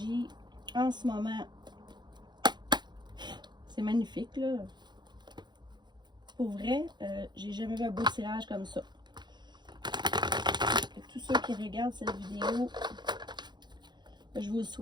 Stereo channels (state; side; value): late; left; 0.21 ms